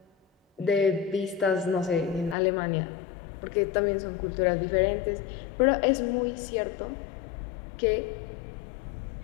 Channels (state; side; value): drops out; right; at 2.4 s